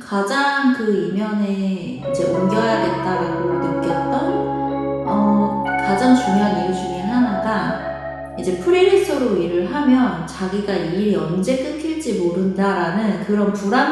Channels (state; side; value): identical; both; correlation 1.00